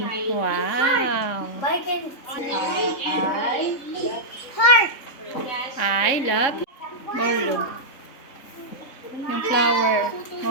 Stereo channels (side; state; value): right; late; 3.7 ms